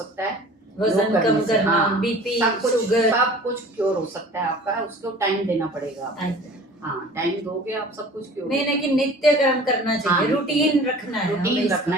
है, वजन कम करना, हाँ, बीपी, शुगर, सब कुछ क्योर हो सकता है आपका। उसको टाइम देना पड़ेगा आपको। हाँ, टाइम दोगे आप, सब कुछ क्योर। नहीं, लेकिन नित्य कर्म करना चाहिए। रूटीन रखना है, रूटीन रखना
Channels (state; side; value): normal; both; correlation 0.44